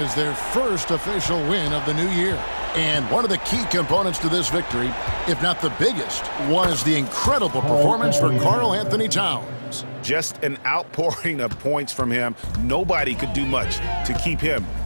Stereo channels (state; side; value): inverted; both; correlation -1.00